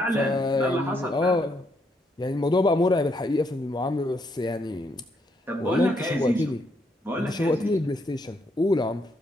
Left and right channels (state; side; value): normal; both; correlation 0.75